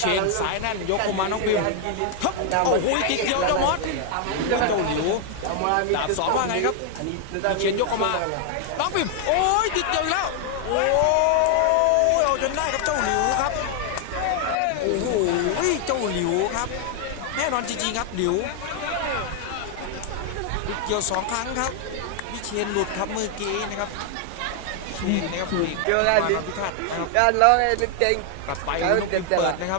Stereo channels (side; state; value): both; different; correlation 0.00